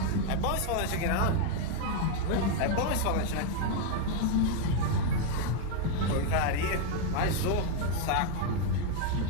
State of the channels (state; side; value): different; both; correlation 0.01